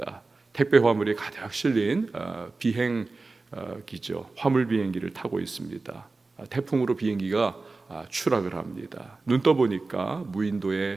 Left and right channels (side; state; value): left; quieter; 3.6 dB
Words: 택배 화물이 가득 실린 비행기죠. 화물 비행기를 타고 있습니다. 태풍으로 비행기가 추락을 합니다. 눈 떠보니까